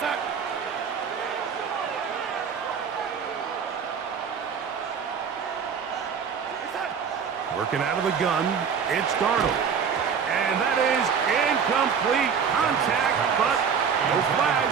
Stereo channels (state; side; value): quieter; left; 6.8 dB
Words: Working out of the gun, it's Darnold. And that is incomplete contact, but No